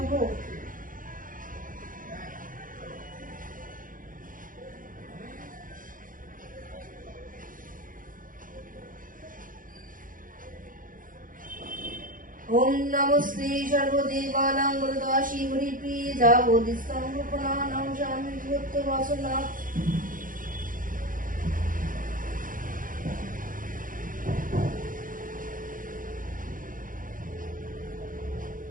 ओम नमो श्री सर्वदेवानां वरदाशी हरिप्रिय जावोदिस्तं रूपनानां शामि भूतवासना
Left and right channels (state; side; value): late; left; 0.40 ms